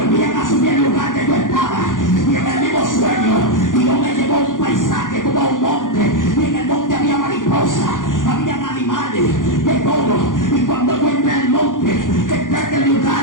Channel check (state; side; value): late; right; 0.89 ms